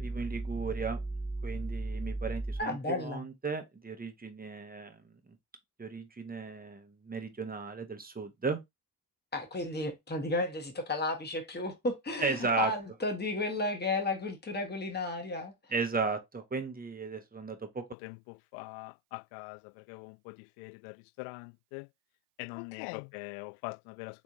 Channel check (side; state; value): right; drops out; at 17.9 s